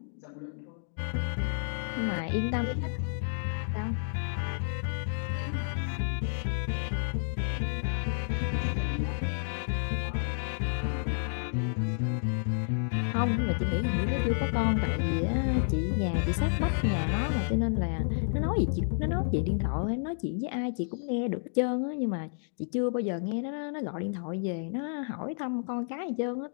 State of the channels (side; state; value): right; silent; digital silence